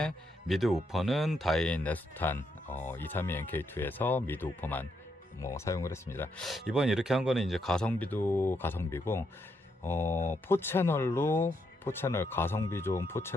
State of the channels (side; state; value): both; normal; correlation 0.79